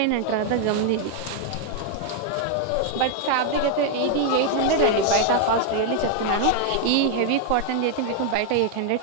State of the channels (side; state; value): both; different; correlation 0.00